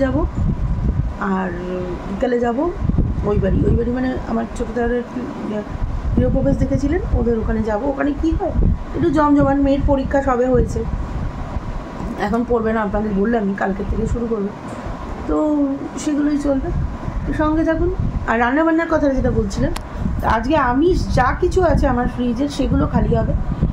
যাব, আর বিকালে যাব ওই বাড়ি মানে আমার ছোটো দাদার গৃহপ্রবেশ দেখেছিলেন, ওদের ওখানে যাব। ওখানে কী হয়, একটু জমজমাট, মেয়ের পরীক্ষা সবে হয়েছে, এখন পড়বে না, আপনাদের বললামই কালকের থেকে শুরু করবে, তো সেগুলোই চলবে, সঙ্গে থাকুন। আর রান্নাবান্নার কথা যেটা বলছিলেন, আজকে আমিষ যা কিছু আছে আমার ফ্রিজের সেগুলো খালি হবে,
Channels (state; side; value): identical; both; correlation 1.00